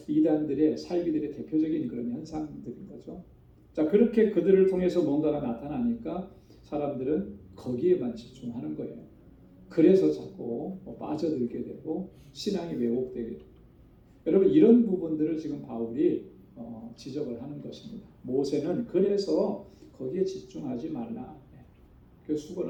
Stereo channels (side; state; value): both; identical; correlation 1.00